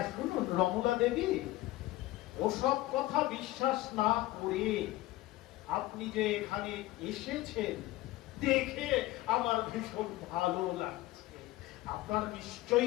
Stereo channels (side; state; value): right; quieter; 17.4 dB